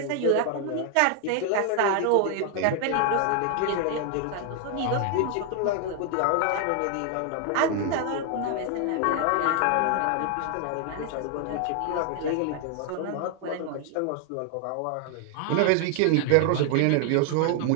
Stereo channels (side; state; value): both; different; correlation 0.00